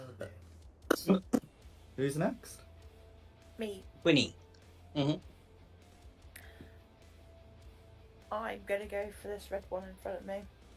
dear. Who's next? Me. Winnie. I'm gonna go for this red one in front of me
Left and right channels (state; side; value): identical; both; correlation 1.00